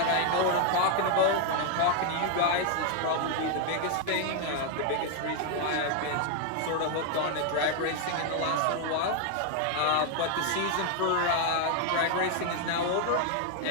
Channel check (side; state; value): both; different; correlation 0.00